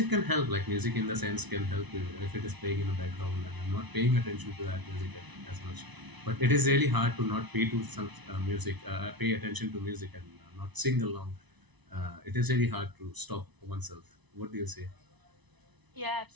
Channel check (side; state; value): left; late; 1.0 ms